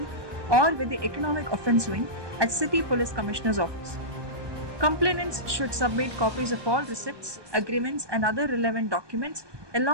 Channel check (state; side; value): late; left; 1.2 ms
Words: or with the Economic Offence Wing at City Police Commissioner's Office. Complainants should submit copies of all receipts, agreements, and other relevant documents